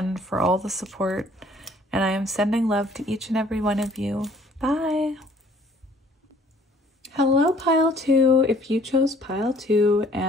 for all the support. And I am sending love to each and every one of you. Bye. Hello, pile 2. If you chose pile 2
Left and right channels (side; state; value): both; normal; correlation 0.58